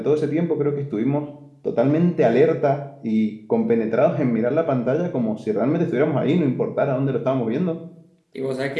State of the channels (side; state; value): both; identical; correlation 1.00